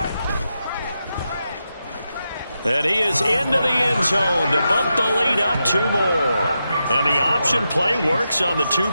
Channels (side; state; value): both; inverted; correlation -0.87